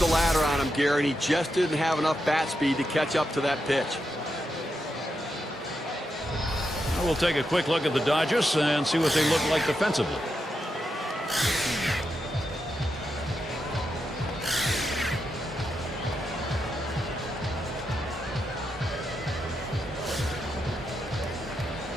ladder on him, Gary, and he just didn't have enough bat speed to catch up to that pitch. We'll take a quick look at the Dodgers and see what they look like defensively.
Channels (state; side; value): normal; both; correlation 0.85